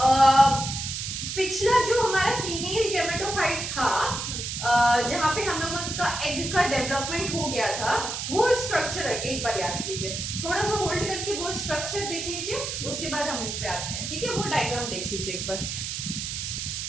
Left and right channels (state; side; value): noise; right; hiss, 4 dB below the sound